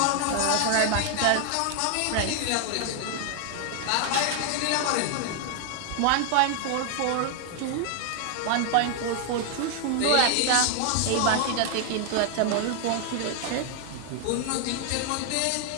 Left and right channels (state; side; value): different; both; correlation 0.00